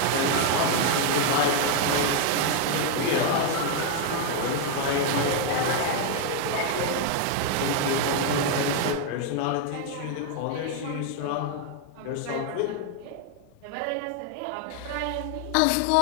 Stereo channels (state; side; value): different; both; correlation 0.01